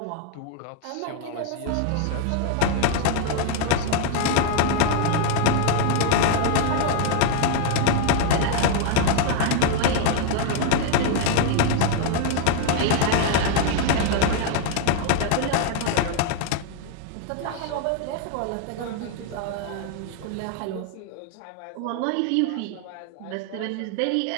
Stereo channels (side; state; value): both; different; correlation 0.01